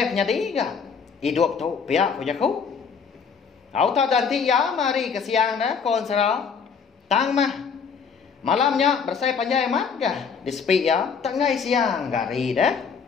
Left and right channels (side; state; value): right; quieter; 6.1 dB